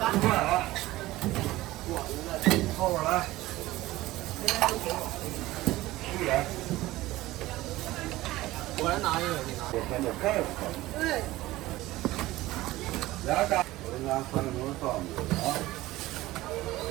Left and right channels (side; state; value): left; quieter; 17.5 dB